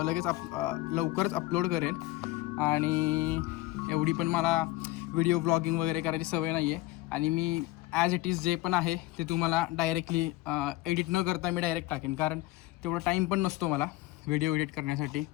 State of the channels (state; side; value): quieter; right; 18.2 dB